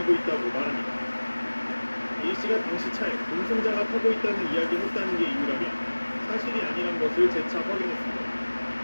있다고 말합니다. A씨가 당시 차에 동승자가 타고 있다는 이야기를 했다는 게 이유라며 사실이 아니란 것을 재차 확인했습니다.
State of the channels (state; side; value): inverted; both; correlation -1.00